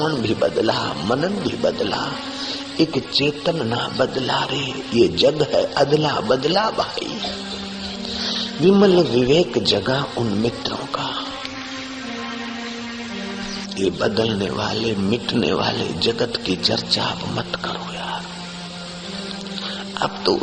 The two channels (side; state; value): both; identical; correlation 1.00